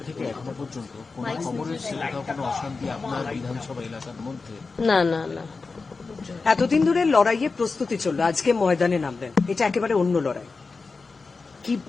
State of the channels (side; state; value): right; quieter; 4.2 dB